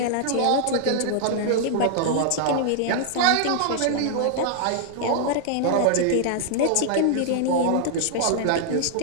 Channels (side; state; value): both; different; correlation -0.01